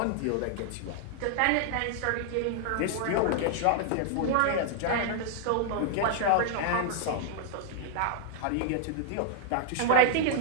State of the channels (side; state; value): both; different; correlation 0.00